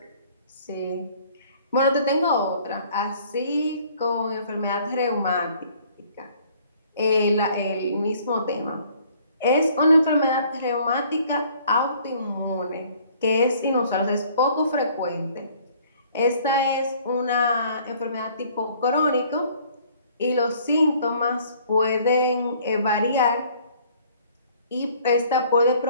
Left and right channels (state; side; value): inverted; both; correlation -0.57